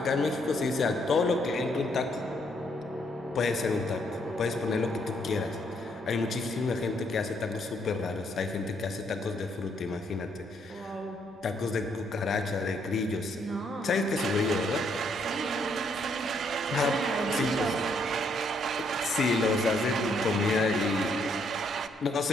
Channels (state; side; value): normal; both; correlation 0.72